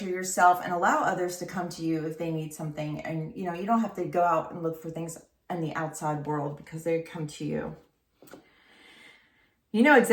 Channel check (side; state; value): both; identical; correlation 1.00